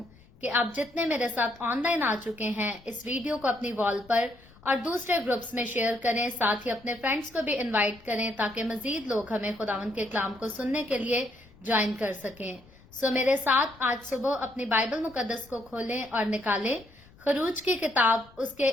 कि आप जितने मेरे साथ ऑनलाइन आ चुके हैं, इस वीडियो को अपनी वॉल पर और दूसरे ग्रुप्स में शेयर करें। साथ ही अपने फ्रेंड्स को भी इनवाइट करें ताकि मजीद लोग हमें खुदावंद के कलाम को सुनने के लिए ज्वाइन कर सकें। सो मेरे साथ आज सुबह अपनी बाइबल मुकद्दस को खोलें और निकालें। खरूज की किताब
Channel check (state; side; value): noise; left; rumble, 25 dB below the sound